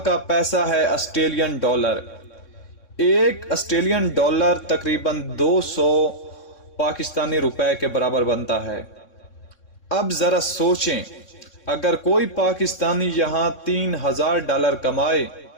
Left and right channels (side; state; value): right; late; 3.6 ms